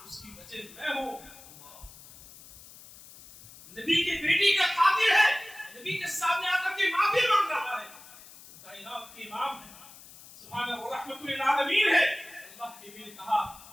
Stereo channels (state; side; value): noise; left; hiss, 19 dB below the sound